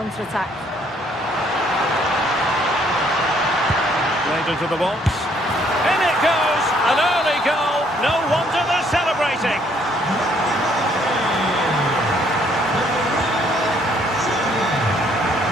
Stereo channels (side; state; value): both; normal; correlation 0.66